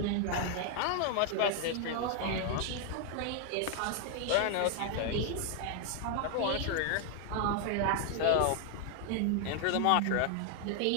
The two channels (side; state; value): both; different; correlation 0.00